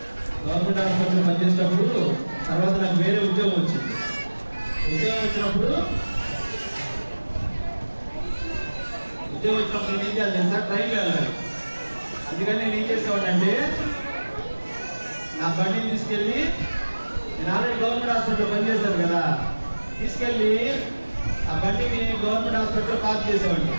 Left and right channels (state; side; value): inverted; both; correlation -1.00